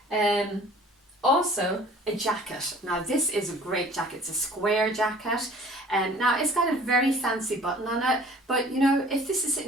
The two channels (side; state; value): both; normal; correlation 0.50